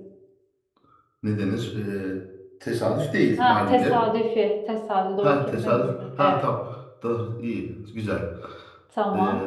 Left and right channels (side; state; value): both; identical; correlation 1.00